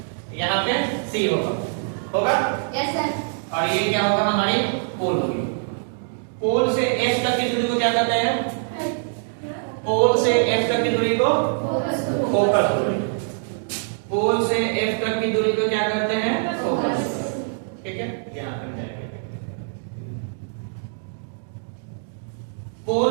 यहाँ पे C होगा यस सर। और ये क्या होगा? हमारी पोल होगी। पोल से F तक की दूरी को क्या कहते हैं? पोल से F तक की दूरी को फोकस दूरी। पोल से F तक की दूरी को क्या कहते हैं? फोकस। ठीक है, यहाँ तक जाएंगे।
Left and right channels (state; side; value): silent; left; digital silence